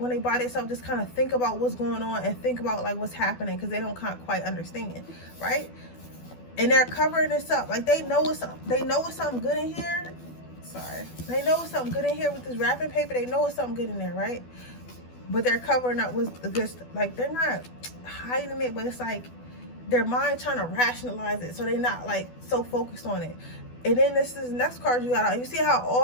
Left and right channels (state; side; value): late; right; 12 ms